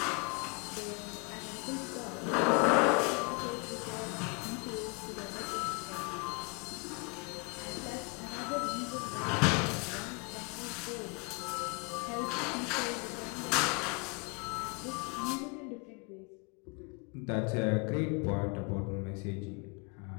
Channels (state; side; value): quieter; right; 32.1 dB